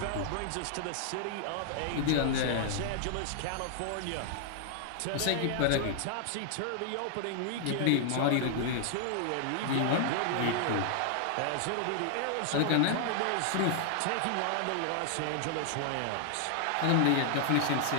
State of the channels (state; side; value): different; both; correlation 0.00